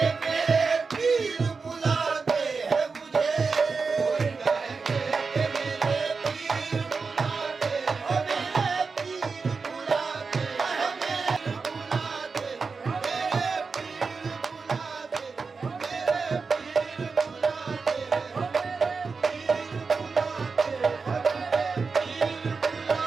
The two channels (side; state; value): left; quieter; 4.7 dB